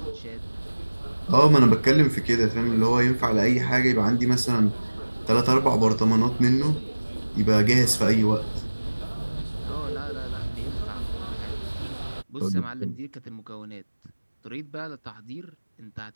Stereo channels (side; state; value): both; inverted; correlation -1.00